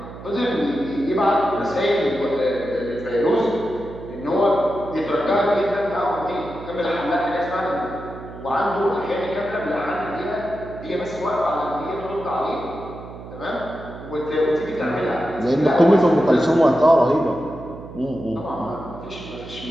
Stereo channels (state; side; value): noise; right; hum, 13 dB below the sound